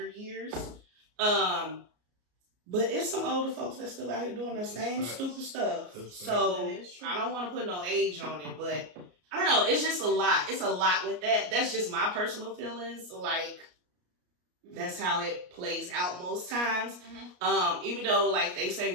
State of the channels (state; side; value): late; left; 33 ms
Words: years. But it's some older folks that still out here doing the same stupid stuff. So I don't want to put no age on it, but I don't know. It's just a lot. It's a lot with that. That's just my personal feelings. Like, that's how it plays out most times. Even though, like, they say